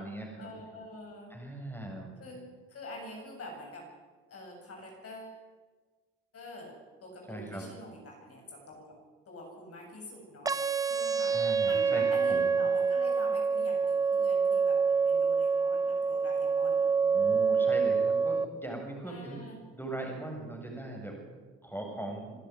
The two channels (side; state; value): left; quieter; 4.7 dB